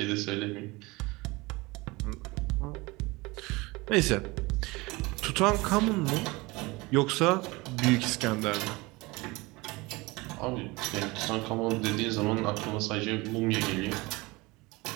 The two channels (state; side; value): quieter; left; 23.2 dB